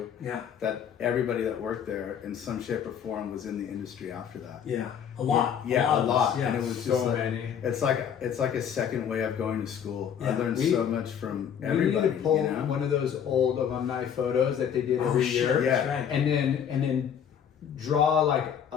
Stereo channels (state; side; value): quieter; right; 8.3 dB